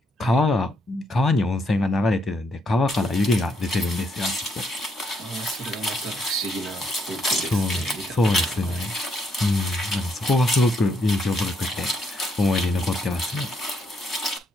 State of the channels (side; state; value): both; normal; correlation 0.75